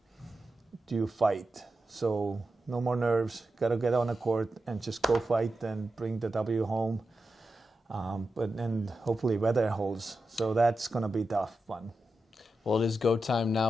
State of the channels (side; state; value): both; normal; correlation 0.90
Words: to fight. So no more nerves. Got to get on the court and just go fight and bring the W home. And hopefully weather holds. So that's going to be a tough one. Well, it is go time